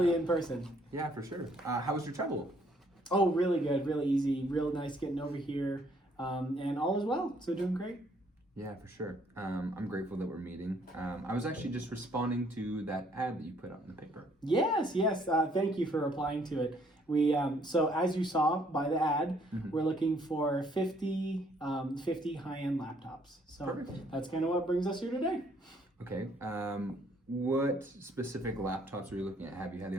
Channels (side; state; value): both; normal; correlation 0.65